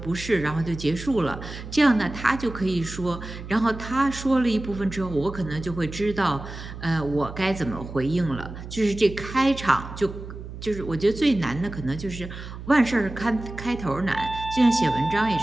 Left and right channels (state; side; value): noise; right; hum, 11 dB below the sound